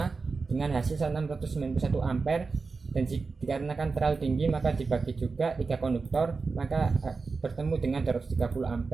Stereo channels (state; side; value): quieter; left; 4.4 dB